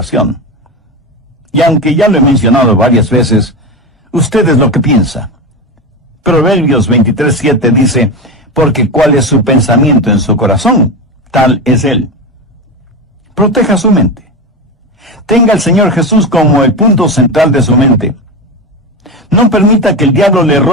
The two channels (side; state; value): both; normal; correlation 0.19